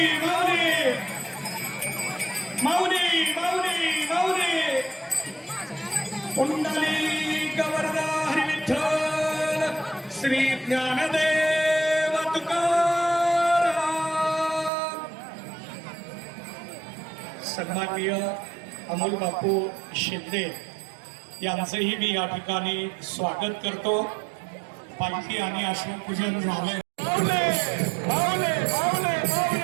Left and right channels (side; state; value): left; drops out; at 14.7 s